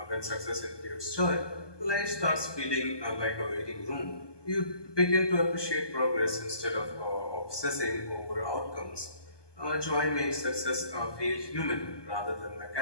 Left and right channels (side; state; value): right; late; 1.2 ms